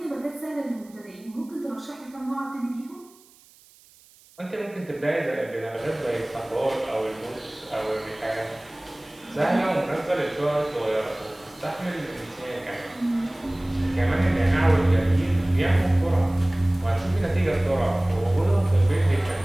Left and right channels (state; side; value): noise; right; hiss, 27 dB below the sound